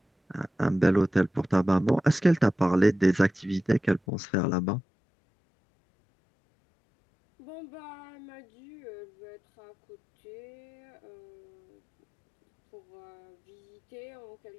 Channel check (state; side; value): drops out; right; at 4.0 s